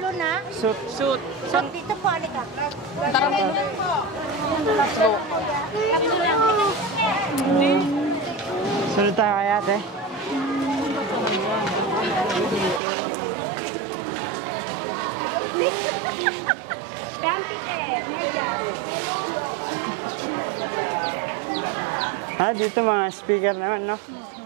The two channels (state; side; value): drops out; left; at 12.8 s